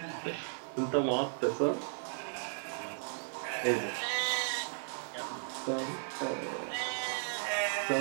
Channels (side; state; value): left; silent; digital silence